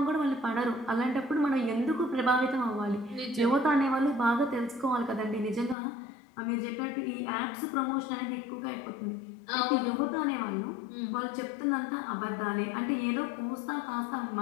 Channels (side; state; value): right; drops out; at 5.8 s